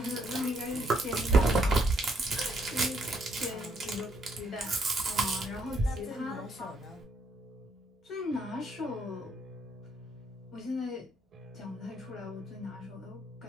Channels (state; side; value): normal; both; correlation 0.72